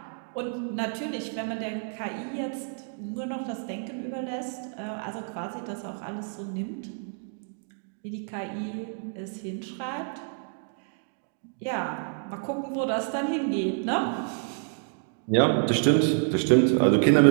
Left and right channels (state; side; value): silent; left; 59 dB below the other